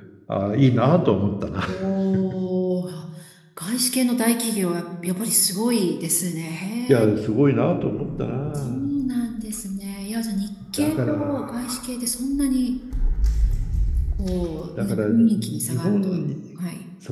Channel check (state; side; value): identical; both; correlation 1.00